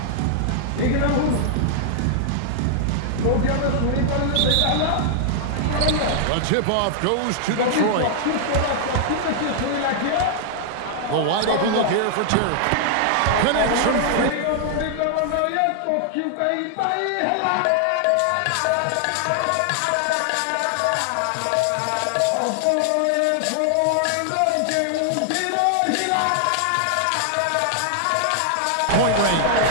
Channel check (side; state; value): both; different; correlation -0.01